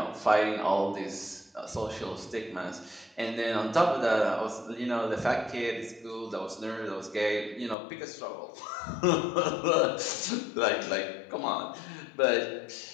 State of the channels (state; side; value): drops out; right; at 7.8 s